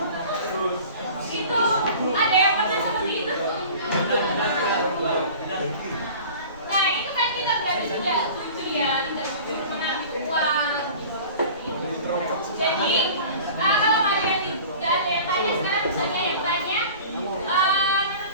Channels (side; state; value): both; inverted; correlation -0.41